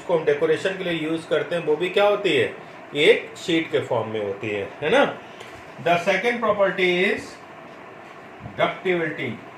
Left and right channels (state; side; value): identical; both; correlation 1.00